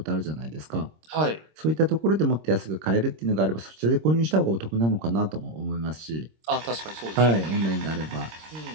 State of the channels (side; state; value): left; late; 26 ms